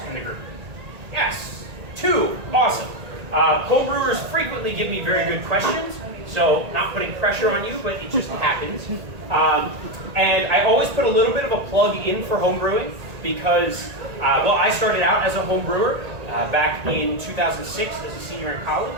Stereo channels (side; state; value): left; late; 1.9 ms